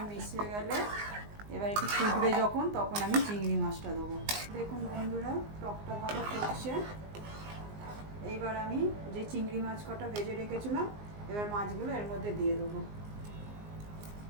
মিশিয়ে গেলে এবার একটু ফুটবে যখন, তখন আমি চিংড়ি মাছটা দেবো। দেখুন বন্ধুরা, টকটা ভালো ফুটছে। এইবার আমি যে চিংড়ি মাছ কটা ভেজে রেখেছিলাম এবার মাছগুলো এর মধ্যে দিয়ে দেবো।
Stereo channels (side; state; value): left; late; 19 ms